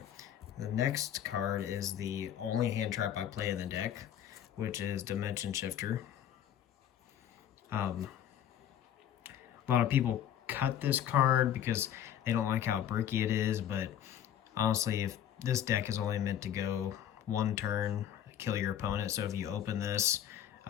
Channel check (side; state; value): right; quieter; 10.3 dB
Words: the next card is the only hand trap I play in the deck, which is Dimension Shifter. A lot of people cut this card because they don't like how bricky it is, but honestly, if this deck is only meant to go 1 turn, kill your opponent, so if you open this,